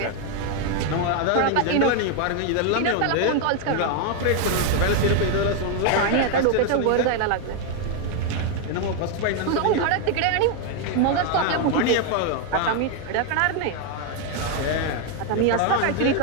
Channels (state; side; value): different; both; correlation 0.01